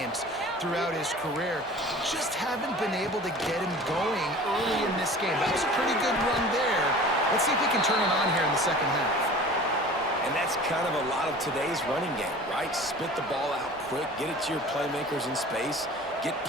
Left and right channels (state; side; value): normal; both; correlation 0.42